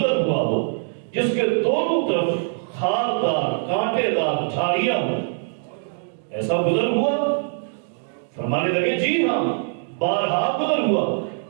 ہوا ہو جس کے دونوں طرف خاردار کانٹے دار جھاڑیاں ہوں، ایسا گزر ہوا؟ فرمانے لگے جی ہاں، بارہا گزر ہوا۔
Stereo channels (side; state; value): left; silent; digital silence